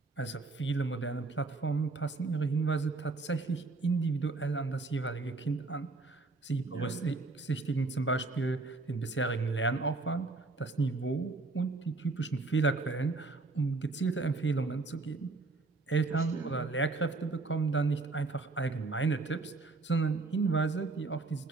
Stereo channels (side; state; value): left; quieter; 3.6 dB